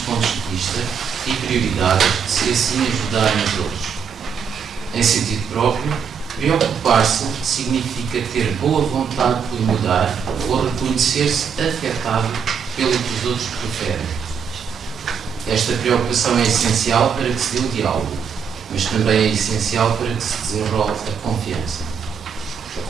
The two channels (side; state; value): left; quieter; 6.9 dB